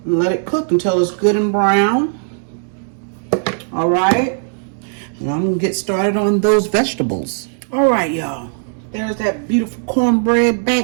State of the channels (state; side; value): silent; left; digital silence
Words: And let it cook until it's good and brown. All right. And I'm gonna get started on those vegetables. All right, y'all. There's that beautiful cornbread